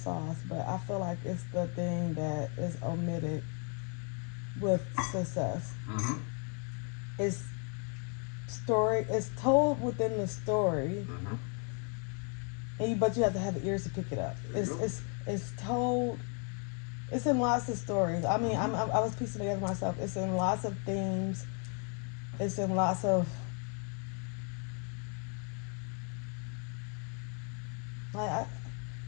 but I feel like it's the thing that is omitted with success. Mm-hmm. It's told within the story, but you have to have the ears to pick it up. It's told. It's in lots of stories. I mean, I was piecing together myself. It's in lots of themes. It's in lots of I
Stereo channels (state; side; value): quieter; right; 39.8 dB